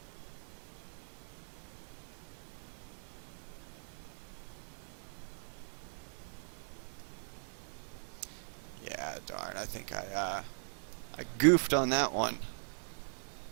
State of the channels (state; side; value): silent; left; digital silence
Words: Yeah, darn, I think I goofed on that one.